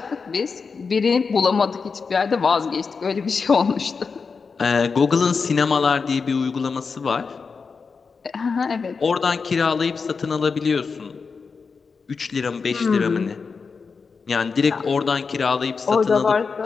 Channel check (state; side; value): quieter; right; 5.1 dB